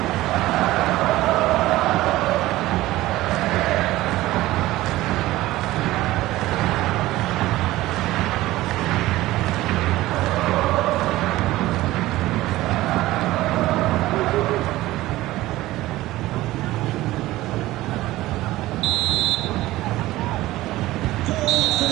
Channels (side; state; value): left; quieter; 17.0 dB